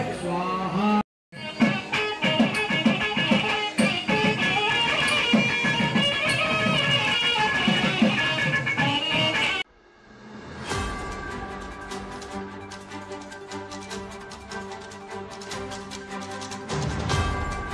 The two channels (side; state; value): both; identical; correlation 1.00